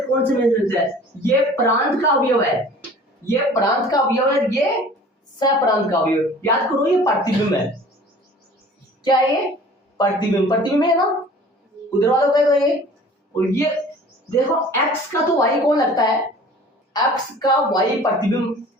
कौन से में मिलता है, ये प्रांत का अवयव है, ये प्रांत का अवयव है, ये सप्रांत का अवयव, याद करो ये प्रतिबिंब है, क्या है ये प्रतिबिंब है ना, उधर वालों का ये, और ये देखो x का तो y कौन लगता है, x का y प्रतिबिंब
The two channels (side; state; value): both; normal; correlation 0.46